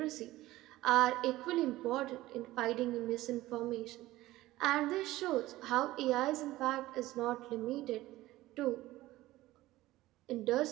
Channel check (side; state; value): left; quieter; 17.0 dB